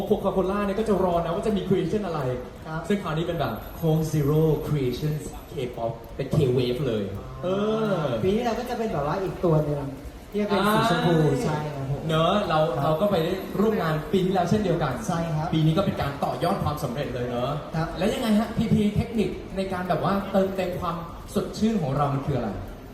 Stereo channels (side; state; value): both; identical; correlation 1.00